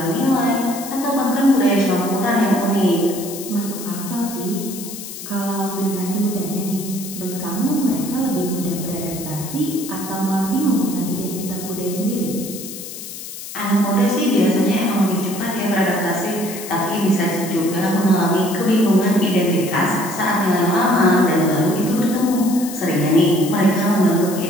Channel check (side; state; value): left; noise; hiss, 11 dB below the sound